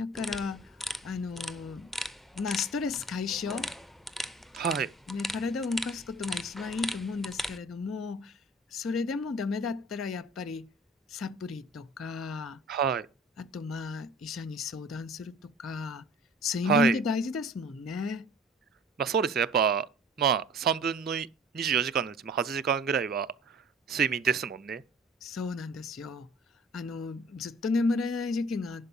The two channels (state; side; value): normal; both; correlation 0.48